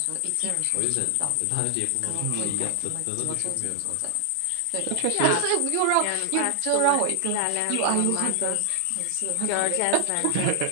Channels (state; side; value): different; both; correlation 0.00